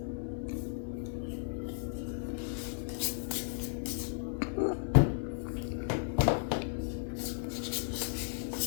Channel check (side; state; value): right; silent; digital silence